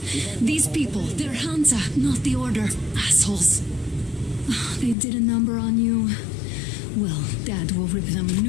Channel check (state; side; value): drops out; right; at 5.0 s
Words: These people, they're Hansa, not the Order. Assholes. They did a number on you. Well, Dad will rip them a